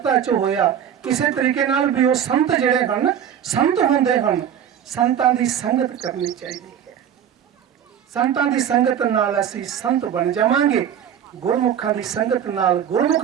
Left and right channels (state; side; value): quieter; left; 9.2 dB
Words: 'ਚ ਹੋਇਆ, ਕਿਸੇ ਤਰੀਕੇ ਨਾਲ ਵੀ ਉਹ ਸੰਤ ਜਿਹੜੇ ਹਨ ਸੰਤ ਹੁੰਦੇ ਹਨ। ਸੰਤਾਂ ਦੀ ਸੰਗਤ ਕਰਨੀ ਚਾਹੀਦੀ ਹੈ। ਸੰਤਾਂ ਦੀ ਸੰਗਤ ਨਾਲ ਅਸੀਂ ਸੰਤ ਬਣ ਜਾਵਾਂਗੇ, ਗੁਰਮੁਖਾਂ ਦੀ ਸੰਗਤ ਨਾਲ